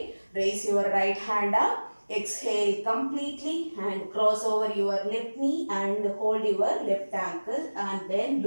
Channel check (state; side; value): inverted; both; correlation -1.00